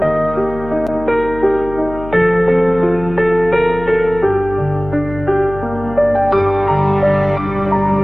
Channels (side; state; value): left; noise; hum, 13 dB below the sound